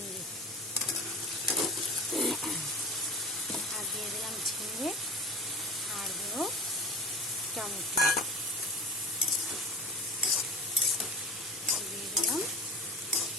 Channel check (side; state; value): both; normal; correlation 0.36